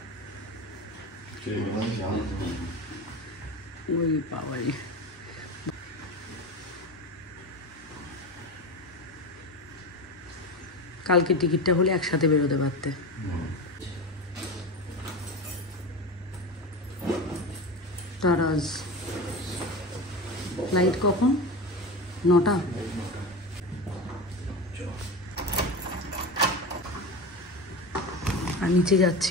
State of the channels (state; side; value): normal; both; correlation 0.24